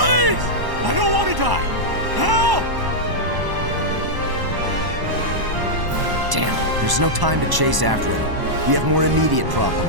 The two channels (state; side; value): late; left; 1.0 ms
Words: I don't want to die! Help! Damn, there's no time to chase after him. We have more immediate